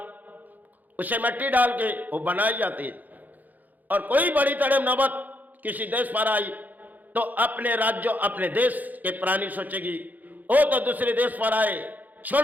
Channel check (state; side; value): late; left; 0.082 ms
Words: उसे मिट्टी डाल के वो बनाई जाती है, और कोई बड़ी तरह नौबत किसी देश पर आई तो अपने राज्य अपने देश के प्राणी सोचेगी, वो तो दूसरे देश पर आए,